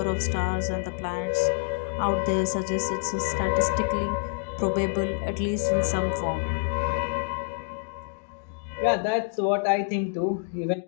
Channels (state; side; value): silent; right; digital silence